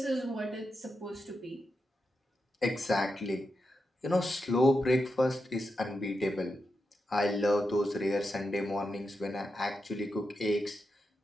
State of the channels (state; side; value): normal; both; correlation 0.87